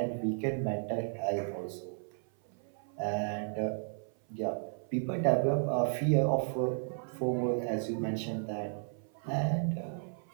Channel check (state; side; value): silent; left; 55 dB below the other